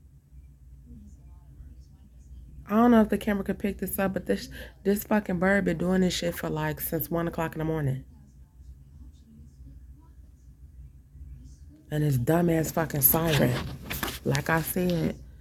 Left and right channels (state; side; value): identical; both; correlation 1.00